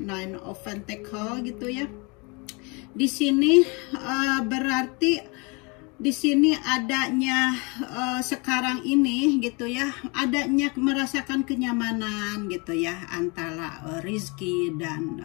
of Pentacle gitu ya. Di sini berarti di sini adanya sekarang ini gitu ya, adanya merasakan kenyamanan gitu ya antara Rizky dan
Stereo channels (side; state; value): right; quieter; 29.8 dB